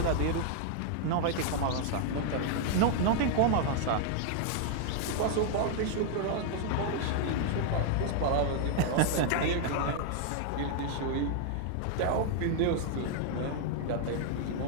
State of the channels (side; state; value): both; different; correlation 0.00